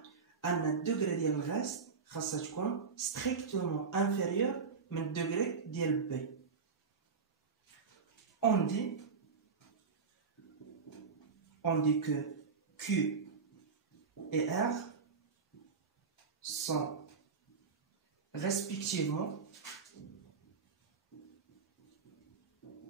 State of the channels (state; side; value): quieter; left; 5.3 dB